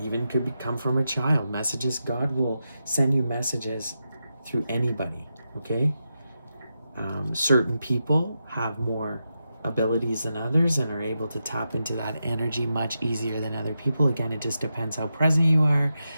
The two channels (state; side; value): inverted; both; correlation -0.88